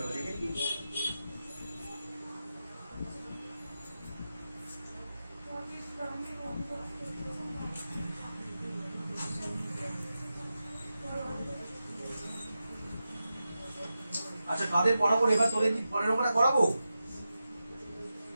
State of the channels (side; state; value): both; inverted; correlation -0.91